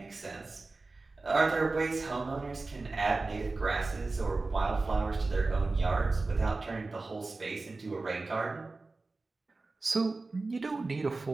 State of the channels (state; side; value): quieter; left; 3.5 dB